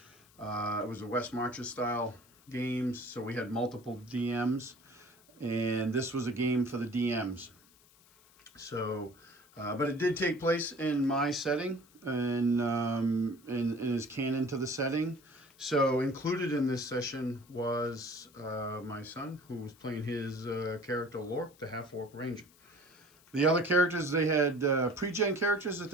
it was a West Marches style games, so we had multiple DMs, and this was a game for the DMs. So, but it did take place in my setting and is canon to the setting. So included in this session was my son, who was playing his character Lork, the half-orc ranger. The other characters, they had pre-gen characters that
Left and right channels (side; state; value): left; noise; hiss, 28 dB below the sound